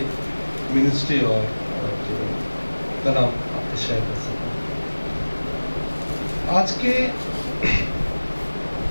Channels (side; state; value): both; inverted; correlation -1.00